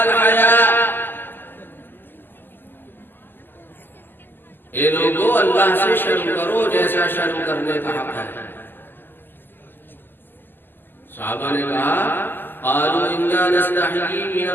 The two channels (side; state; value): right; late; 0.093 ms